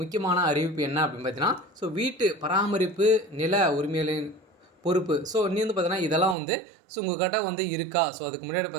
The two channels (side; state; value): left; drops out; at 6.4 s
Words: முக்கியமான அறிவிப்பு என்ன அப்படின்னு பார்த்தீங்கன்னா வீட்டு பராமரிப்பு நில உரிமைகளின் பொறுப்பு. நீ வந்து பார்த்தீங்கன்னா இதெல்லாம் வந்து உங்கள்கிட்ட வந்து இருக்கா? அதுக்கு முன்னாடி